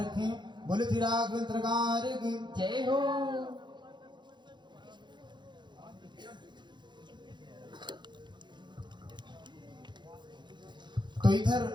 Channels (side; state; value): left; late; 0.22 ms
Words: बोले श्री राघवेंद्र सरकार की जय हो। तो इधर